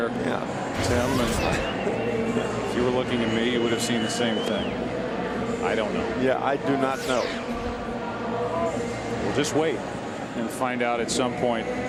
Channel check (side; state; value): both; identical; correlation 1.00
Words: Tim. And if you were looking at me, you would have seen the same thing. I don't know. Yeah, I do not know. We'll just wait and find out at some point